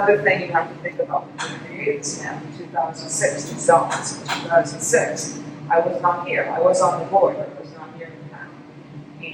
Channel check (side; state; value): both; identical; correlation 1.00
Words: thing you have to think about. When we created this map in 2006, the zones in 2006, I was not here. I was on the board, but I was not here in